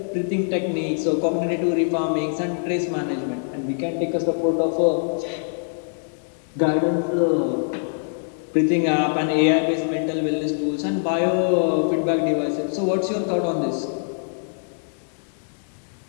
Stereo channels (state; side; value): silent; right; 63 dB below the other